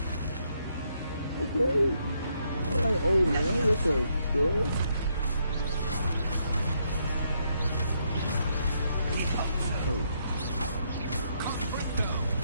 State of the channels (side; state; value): both; inverted; correlation -0.75